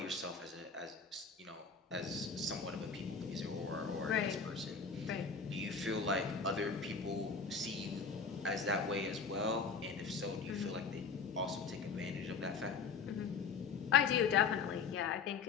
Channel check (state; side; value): quieter; right; 5.3 dB